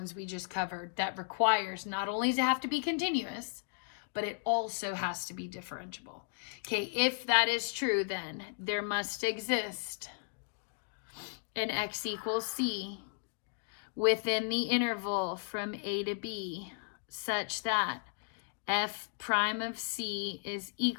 we just covered that requires not only to have to be continuous, but it also has to be differentiable. Okay, if that is true, then there must exist an x equals c within the interval from a to b such that f prime of c is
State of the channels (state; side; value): silent; right; digital silence